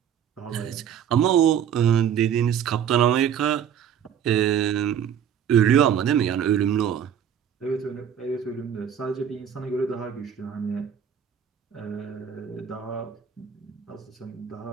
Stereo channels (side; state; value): left; quieter; 8.8 dB